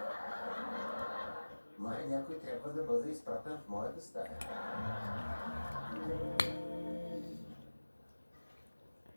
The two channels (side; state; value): both; inverted; correlation -1.00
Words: Май някой трябва да бъде изпратен в моята стая.